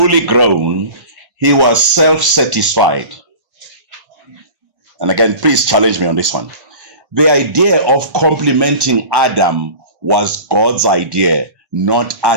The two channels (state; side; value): late; left; 1.1 ms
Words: grown, he was self satisfied. And again, please challenge me on this one. The idea of complementing Adam was God's idea, not